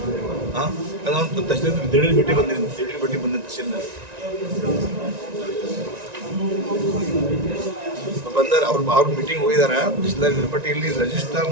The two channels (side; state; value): left; late; 1.9 ms